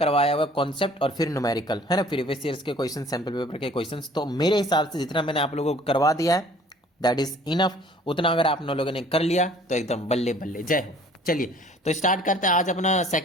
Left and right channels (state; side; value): normal; both; correlation 0.53